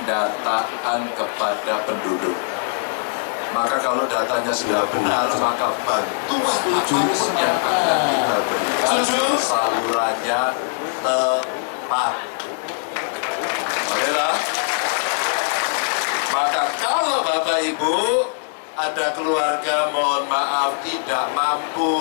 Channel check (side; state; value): right; silent; digital silence